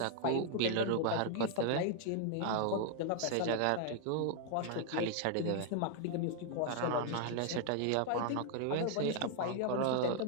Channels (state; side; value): different; both; correlation 0.00